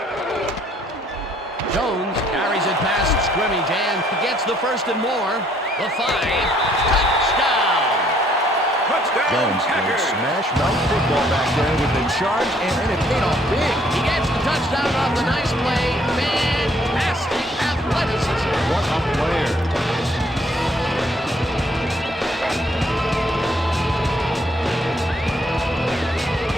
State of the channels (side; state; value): both; normal; correlation 0.65